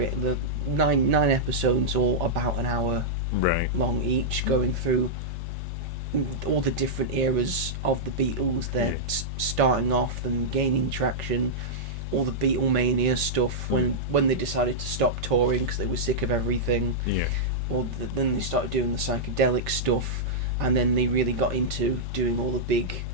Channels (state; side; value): normal; both; correlation -0.09